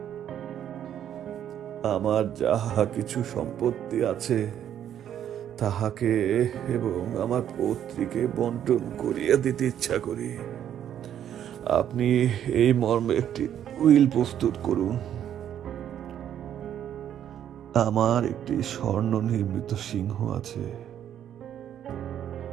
আমার যাহা কিছু সম্পত্তি আছে তাহাকে এবং আমার পৌত্রীকে বন্টন করিয়া দিতে ইচ্ছা করি। আপনি এই মর্মে একটি উইল প্রস্তুত করুন। আমার একটি স্বর্ণ নির্মিত সিংহ আছে।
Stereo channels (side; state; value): left; quieter; 10.1 dB